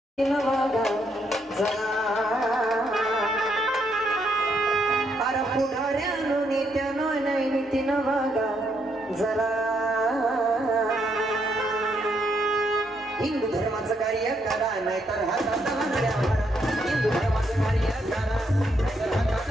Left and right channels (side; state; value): both; normal; correlation 0.75